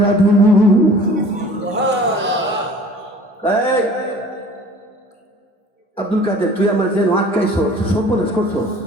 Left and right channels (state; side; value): normal; both; correlation 0.47